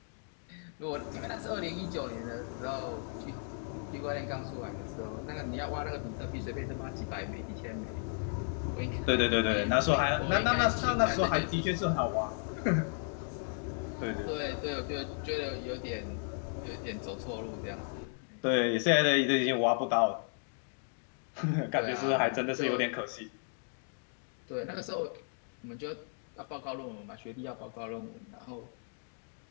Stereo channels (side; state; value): right; silent; 55 dB below the other